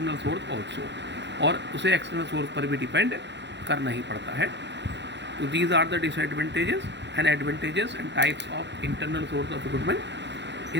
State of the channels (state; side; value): late; left; 0.52 ms